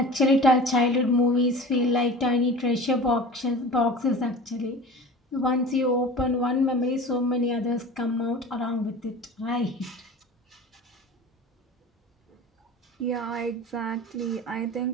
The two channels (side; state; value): both; normal; correlation 0.37